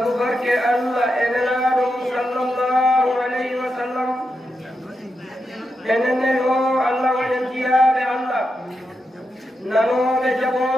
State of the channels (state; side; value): normal; both; correlation 0.86